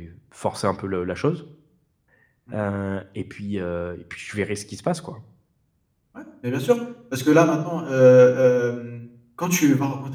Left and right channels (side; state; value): both; identical; correlation 1.00